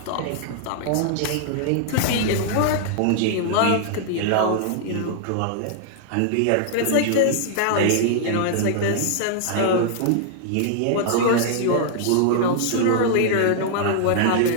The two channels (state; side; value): different; both; correlation -0.01